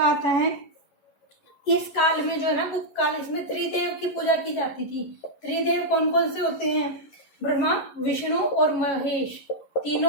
आता है इस काल में जो है ना, गुप्त काल, इसमें त्रिदेव की पूजा की जाती थी। त्रिदेव कौन कौन से होते हैं? ब्रह्मा, विष्णु और महेश,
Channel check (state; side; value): late; right; 11 ms